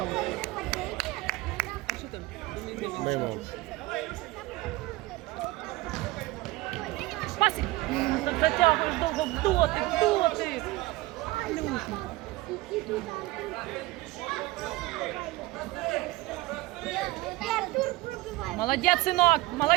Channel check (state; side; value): quieter; left; 19.8 dB